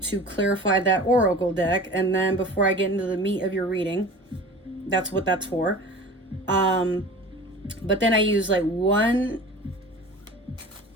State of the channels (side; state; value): both; normal; correlation 0.38